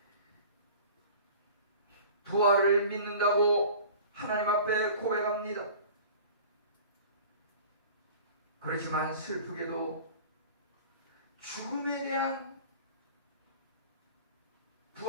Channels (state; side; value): inverted; both; correlation -0.42